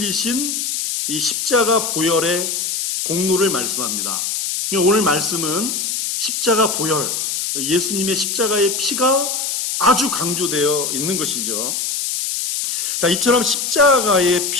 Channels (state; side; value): noise; left; hiss, 1 dB below the sound